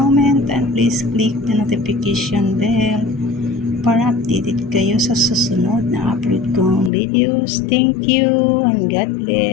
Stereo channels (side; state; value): right; drops out; at 6.9 s